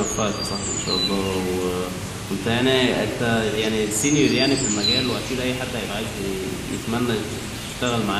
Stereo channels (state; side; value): identical; both; correlation 1.00